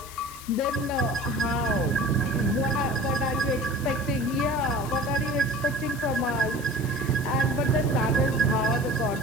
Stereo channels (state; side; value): noise; left; hiss, 15 dB below the sound